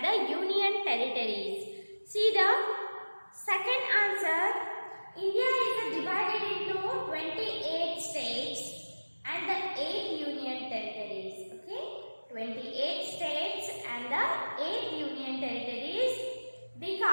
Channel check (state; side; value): inverted; both; correlation -1.00